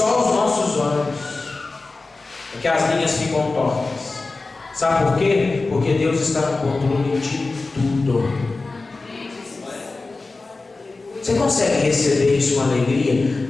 os nossos olhos é que as linhas ficam tortas. Sabe por quê? Porque Deus está no controle de tudo. Você consegue receber isso com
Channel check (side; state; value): right; quieter; 3.6 dB